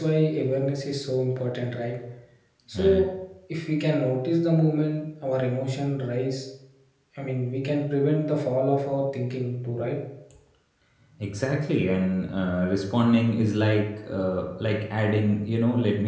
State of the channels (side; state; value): both; identical; correlation 1.00